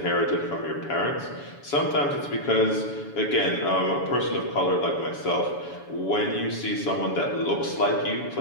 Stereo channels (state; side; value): late; right; 7.1 ms